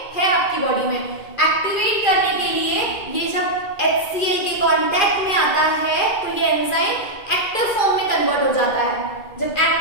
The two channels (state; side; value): late; right; 2.5 ms